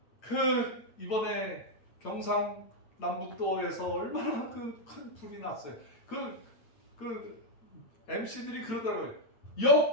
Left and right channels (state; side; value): late; right; 8.8 ms